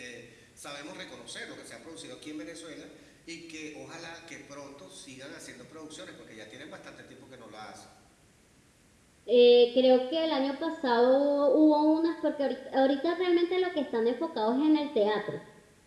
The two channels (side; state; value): both; identical; correlation 1.00